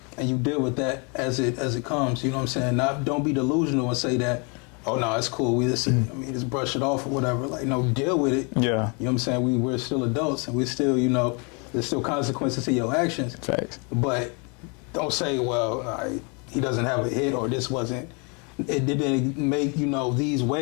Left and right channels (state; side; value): quieter; right; 33.7 dB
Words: and you deal with that as it comes. You know what I'm saying? Don't be delusional and say that, oh no, it's cool. Just brush it off or whatever. Like, no, deal with it. Yeah. You know what I'm saying? We're still adults, and we're still, there's still consequences to your actions. Facts. But don't say, well, he doesn't have a hit, or it didn't make, these